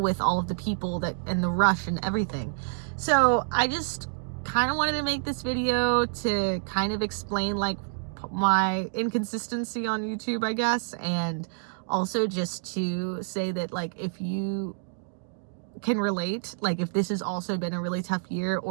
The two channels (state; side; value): silent; left; digital silence